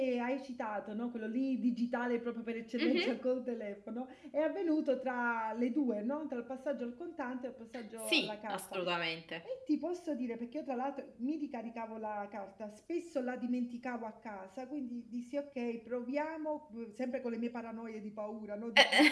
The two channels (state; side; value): identical; both; correlation 1.00